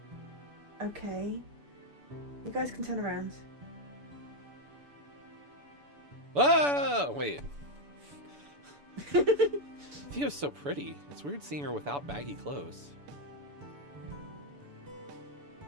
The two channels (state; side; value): late; left; 7.0 ms